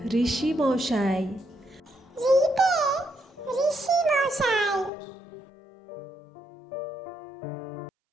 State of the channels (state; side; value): drops out; right; at 4.9 s